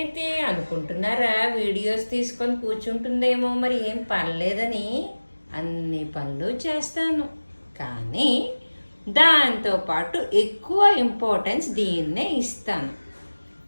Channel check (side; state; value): both; inverted; correlation -1.00